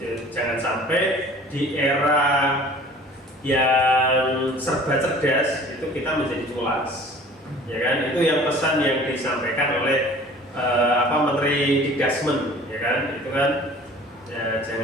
jangan sampai di era yang serba cerdas itu kita menjadi culas. Ya kan, itu yang pesan yang disampaikan oleh Menteri Dikdasmen, ya kan, itu kan ya,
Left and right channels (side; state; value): both; normal; correlation 0.47